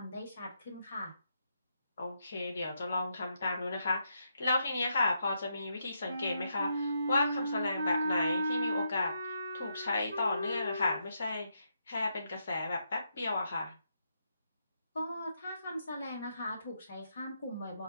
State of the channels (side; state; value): both; inverted; correlation -0.80